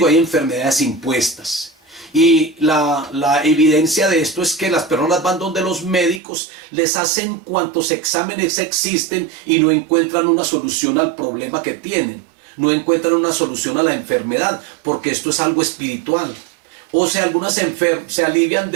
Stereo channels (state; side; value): drops out; left; at 6.2 s